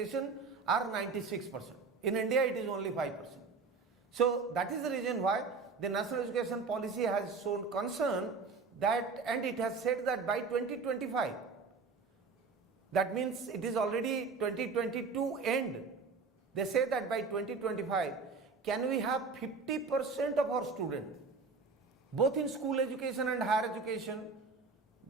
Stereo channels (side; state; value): left; quieter; 4.6 dB